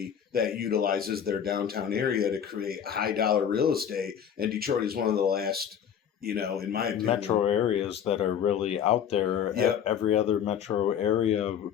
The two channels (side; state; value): right; quieter; 8.6 dB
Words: that utilizes their downtown area to create high dollar real estate. And Detroit is one of the last, in my opinion, metro areas that are really out there. Yep. Every other metro area